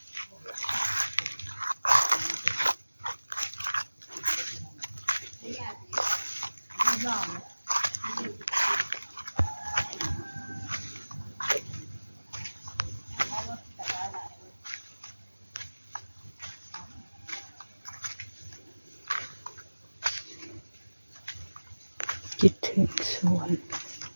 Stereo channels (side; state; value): both; inverted; correlation -1.00